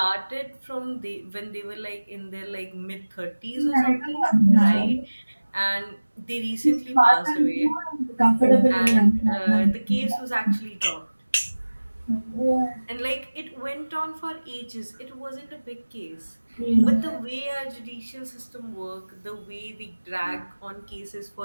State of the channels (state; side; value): inverted; both; correlation -1.00